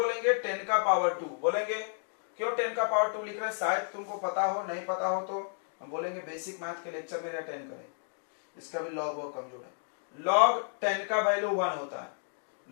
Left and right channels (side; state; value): right; silent; digital silence